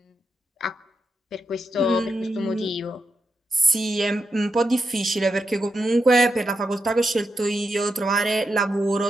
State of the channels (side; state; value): both; normal; correlation 0.85